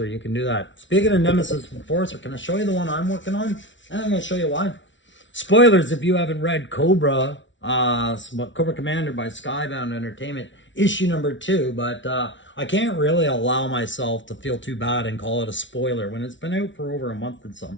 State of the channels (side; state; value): right; late; 0.55 ms